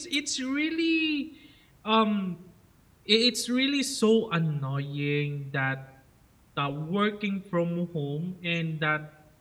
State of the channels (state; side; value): identical; both; correlation 1.00